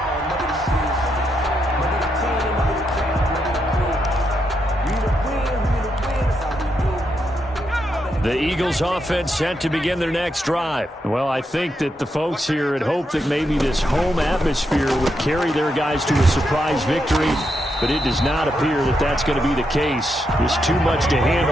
The Eagles offense set to begin their next drive. Well, I think that the folks here had hoped that maybe this home atmosphere would carry their guys to a surprise victory, but it does not appear that that's going to be the case. There's too much to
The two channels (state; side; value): normal; both; correlation 0.82